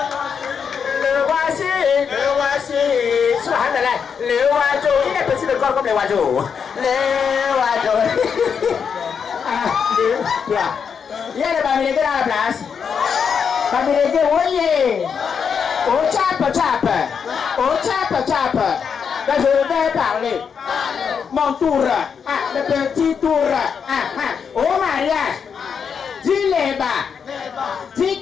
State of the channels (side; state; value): right; quieter; 6.7 dB